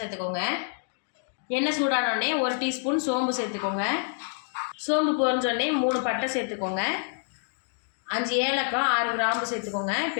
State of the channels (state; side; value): silent; right; 59 dB below the other